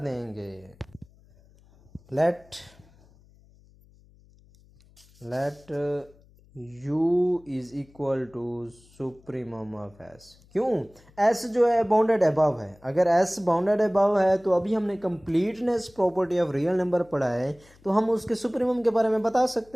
Let u is equal to supremum of S. क्यों? एस जो है बाउंडेड अबव है। अगर एस बाउंडेड अबव है तो अभी हमने completeness property of real number पढ़ा है, तो हम उसके सुप्रीमम के बारे में बता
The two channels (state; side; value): noise; left; hum, 28 dB below the sound